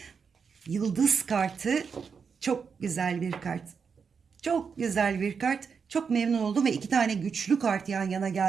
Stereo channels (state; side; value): quieter; left; 6.0 dB